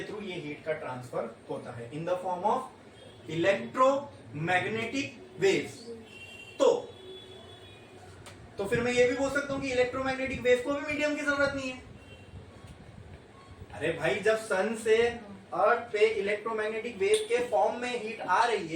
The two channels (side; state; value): both; identical; correlation 1.00